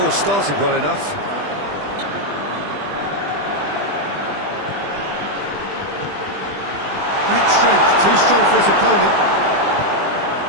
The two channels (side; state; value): left; late; 20 ms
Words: started well enough. Great strength, too strong for his opponent.